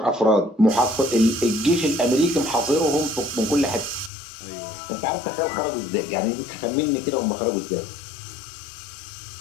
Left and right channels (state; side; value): drops out; right; at 4.1 s